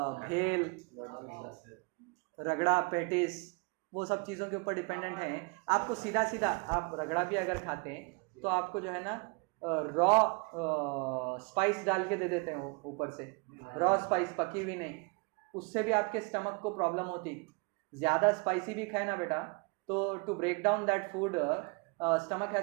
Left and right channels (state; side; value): quieter; left; 31.1 dB